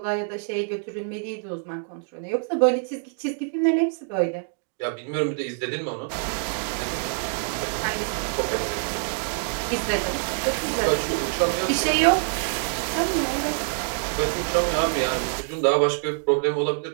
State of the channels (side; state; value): left; silent; 61 dB below the other